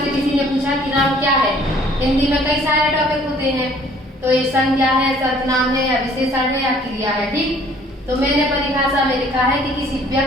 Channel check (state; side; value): normal; both; correlation 0.57